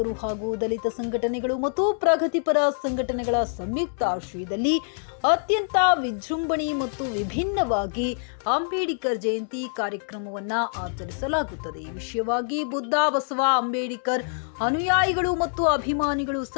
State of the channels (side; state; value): right; silent; digital silence